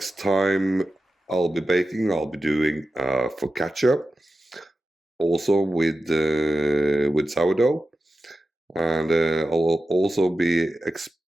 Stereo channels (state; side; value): normal; both; correlation 0.92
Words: time I'll be baking, I'll be doing focaccia, also with sourdough, and I'll also be